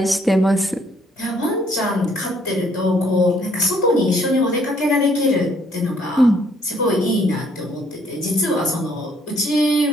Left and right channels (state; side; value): normal; both; correlation 0.65